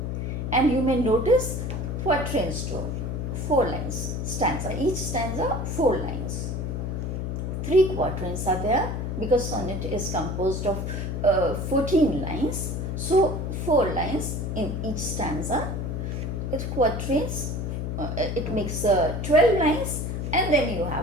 And you may notice quatrains too. 4 lines stanza. Each stanza 4 lines. 3 quatrains are there because sonnet is composed of 14 lines. So 4 lines in each stanza. It's quatrains. It makes 12 lines, and then you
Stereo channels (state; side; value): noise; left; hum, 3 dB below the sound